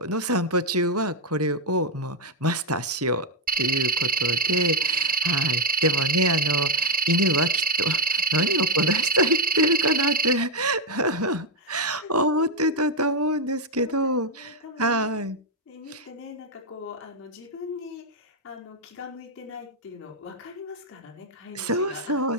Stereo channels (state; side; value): normal; both; correlation 0.03